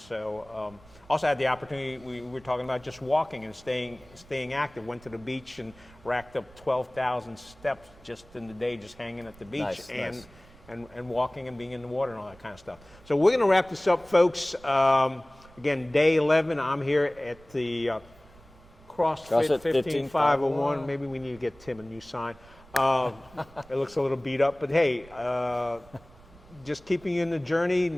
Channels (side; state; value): right; noise; rumble, 24 dB below the sound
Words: also had the opportunity, we were talking about just walking and staying active. Went to the beach and racked up 12,000 steps just in the day, just hanging at the beach and walking and being in the water and all that kind of stuff. So we're going to wrap this up, folks. Again, day 11. I'm here at the CrossFit 15501. Maybe we need to get Tim a new sign. It looks a little beat up, but hey, just keeping you in the journey